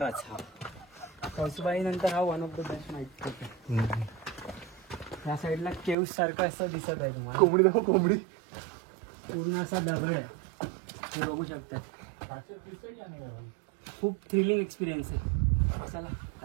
हा कळसुबाई नंतर हा one of the best night trek आहे. या साईडला केव्ज सारखं असं दिसत आहे तुम्हाला. कोंबडी दाखव, कोंबडी. पूर्ण असा दगड आहे, हे बघू शकतात. खूप थ्रिलिंग एक्सपिरियन्स आहे. चला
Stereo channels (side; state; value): left; drops out; at 6.0 s